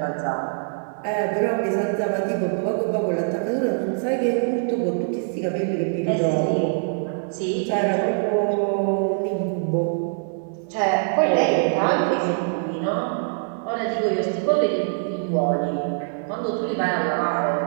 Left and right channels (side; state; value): left; silent; digital silence